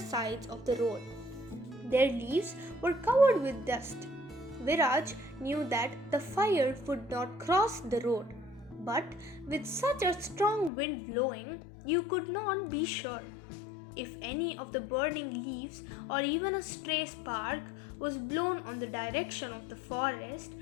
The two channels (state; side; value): drops out; right; at 10.7 s